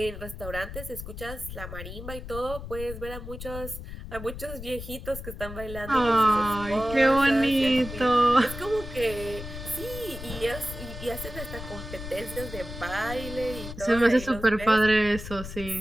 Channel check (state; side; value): noise; left; rumble, 10 dB below the sound